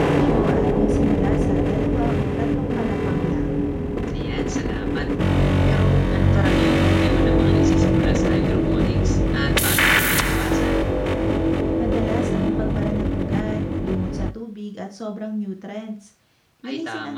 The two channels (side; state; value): both; identical; correlation 1.00